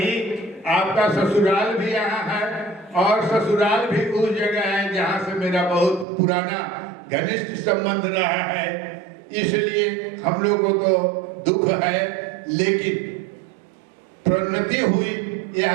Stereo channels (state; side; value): drops out; left; at 6.1 s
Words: आपका ससुराल भी यहाँ है और ससुराल भी उस जगह है जहाँ से मेरा बहुत पुराना घनिष्ठ संबंध रहा है। इसलिए हम लोगों को दुख है, लेकिन प्रोन्नति हुई,